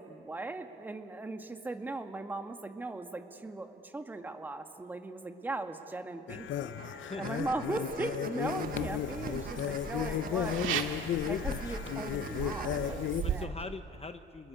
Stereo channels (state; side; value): normal; both; correlation 0.46